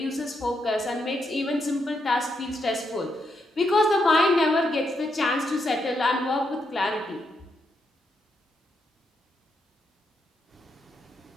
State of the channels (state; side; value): normal; both; correlation 0.80